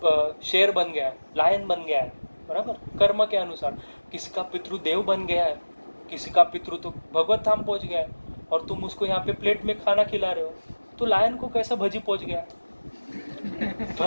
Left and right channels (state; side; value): inverted; both; correlation -1.00